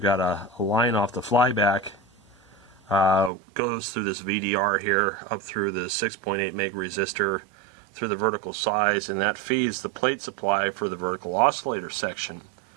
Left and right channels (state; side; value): drops out; left; at 3.3 s